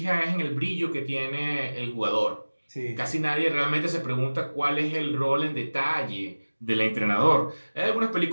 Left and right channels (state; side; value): inverted; both; correlation -1.00